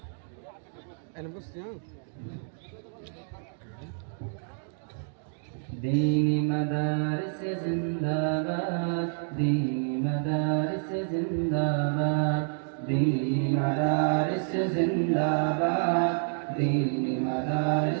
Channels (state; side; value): silent; left; digital silence